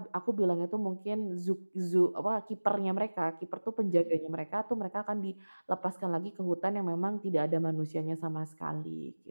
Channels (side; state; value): both; inverted; correlation -1.00